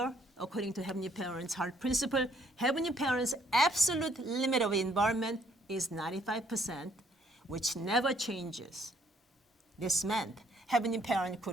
according to Heavenly Parent's heart principle, Heavenly Parent's absolute limit of involvement is 95%, which never changes. This meant Heavenly Parent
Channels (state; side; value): normal; both; correlation 0.66